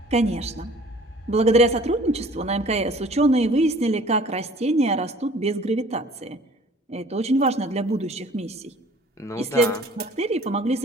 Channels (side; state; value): both; normal; correlation 0.51